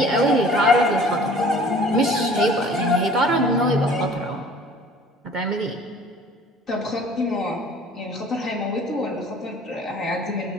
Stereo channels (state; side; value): normal; both; correlation 0.49